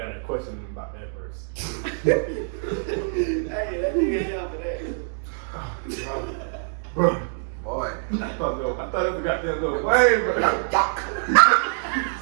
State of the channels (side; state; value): left; silent; digital silence